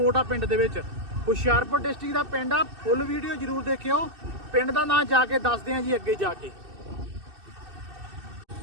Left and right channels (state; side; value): late; left; 2.6 ms